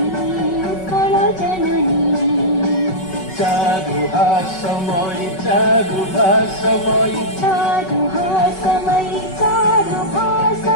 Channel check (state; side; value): late; right; 5.3 ms